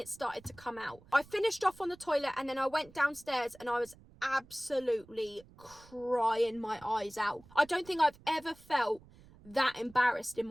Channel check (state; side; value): noise; right; rumble, 24 dB below the sound